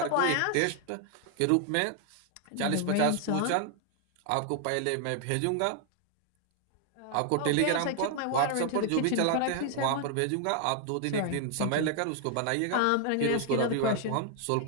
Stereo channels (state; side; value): different; both; correlation 0.00